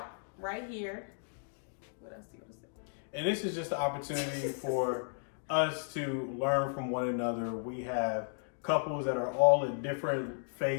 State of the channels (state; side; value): silent; right; digital silence